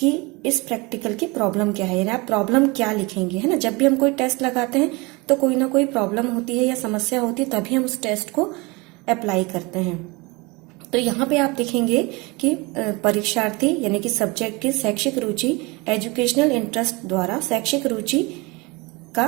इस प्रैक्टिकल की प्रॉब्लम क्या है, यानी आप प्रॉब्लम क्या लिखेंगे, है ना। जब भी हम कोई टेस्ट लगाते हैं तो कोई ना कोई प्रॉब्लम होती है या समस्या होती है, तभी हम उस टेस्ट को अप्लाई करते हैं। तो यहाँ पे आप देखेंगे कि परीक्षार्थी यानी कि सब्जेक्ट की शैक्षिक रुचि एजुकेशनल इंटरेस्ट द्वारा शैक्षिक रुचि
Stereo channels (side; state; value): left; quieter; 25.5 dB